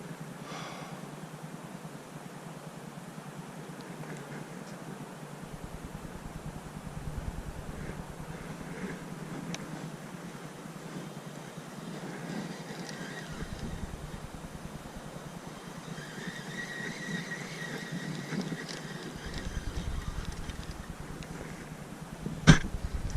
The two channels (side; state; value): both; identical; correlation 1.00